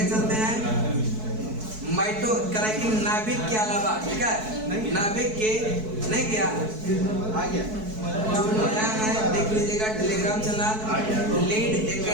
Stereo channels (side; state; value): left; late; 4.6 ms